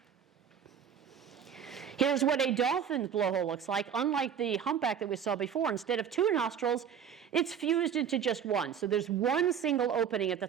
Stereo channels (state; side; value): quieter; left; 8.1 dB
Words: Here's what a dolphin's blowhole looks like. Unlike the humpback that we saw before, instead of two nostrils, it's fused into just one. So there's one single opening at the